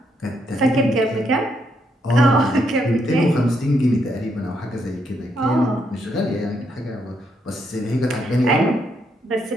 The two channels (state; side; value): normal; both; correlation 0.76